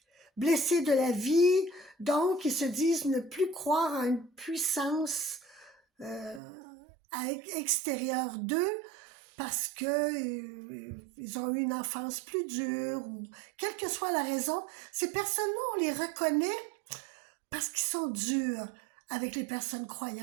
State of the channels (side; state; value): left; drops out; at 6.4 s